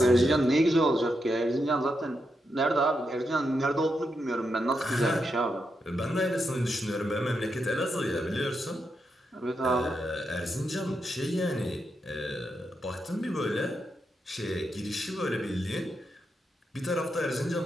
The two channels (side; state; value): both; normal; correlation 0.84